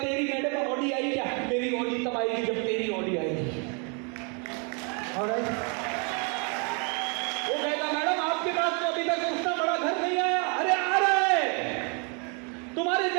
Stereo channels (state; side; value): quieter; left; 35.9 dB